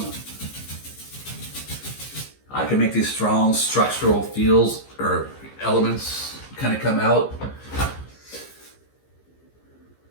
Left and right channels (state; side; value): late; right; 15 ms